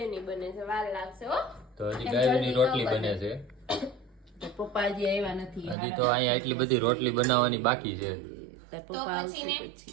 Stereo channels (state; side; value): drops out; left; at 5.8 s